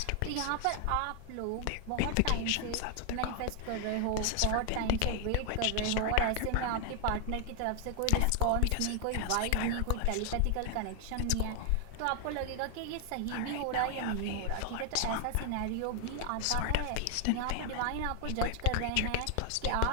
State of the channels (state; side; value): different; both; correlation 0.00